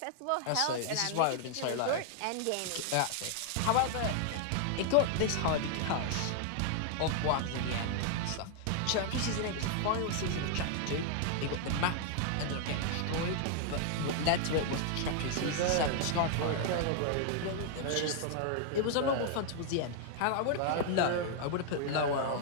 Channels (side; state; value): both; different; correlation 0.00